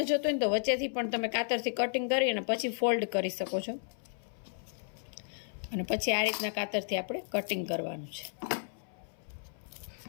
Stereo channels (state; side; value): silent; right; 56 dB below the other